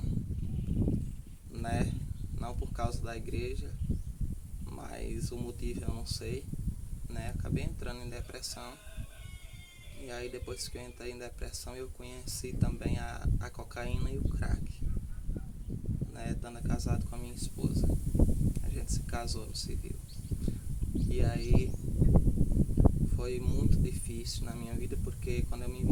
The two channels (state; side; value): identical; both; correlation 1.00